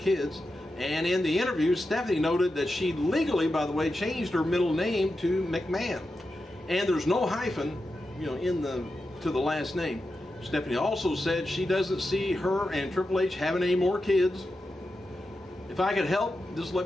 And in the interview, Stephanie noted that she legally, by the way, changed her middle name to McMahon, and there's no hyphen, to the last name. Stephanie also said she doesn't see her and Triple H having any more kids. If I could help, just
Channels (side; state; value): both; normal; correlation 0.90